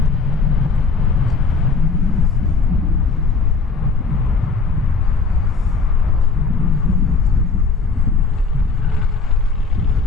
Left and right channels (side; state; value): right; quieter; 4.4 dB